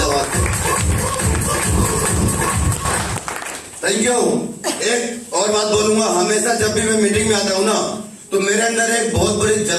Thank you. एक और बात बोलूंगा, हमेशा जब भी मैं मीटिंग में आता हूँ ना, तो मेरे अंदर एक बहुत बड़ी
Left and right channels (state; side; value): identical; both; correlation 1.00